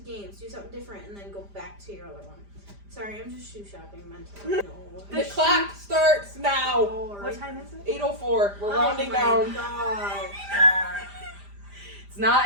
Games, do something different, and then go back to your other one. Sorry, I'm just shoe shopping mentally. No. The clock starts now. What time is it? 8:04. We're rounding down. God. It's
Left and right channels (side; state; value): left; late; 5.0 ms